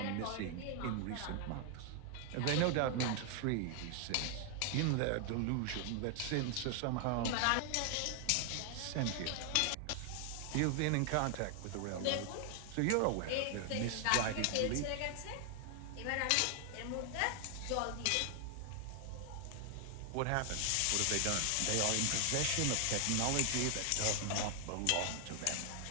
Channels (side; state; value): both; different; correlation 0.00